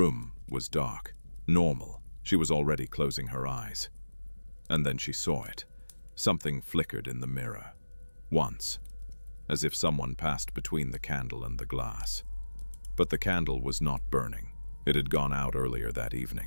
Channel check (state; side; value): inverted; both; correlation -1.00